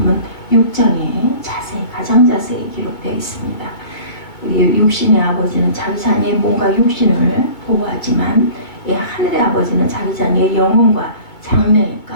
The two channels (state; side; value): late; right; 2.2 ms